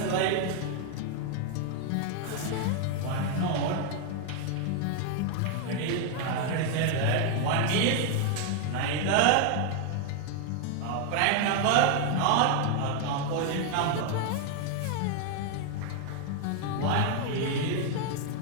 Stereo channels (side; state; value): both; different; correlation 0.00